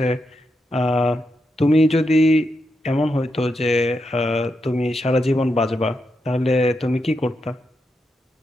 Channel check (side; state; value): both; normal; correlation 0.84